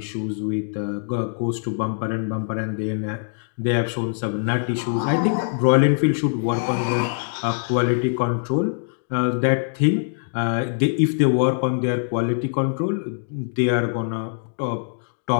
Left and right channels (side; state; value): right; silent; digital silence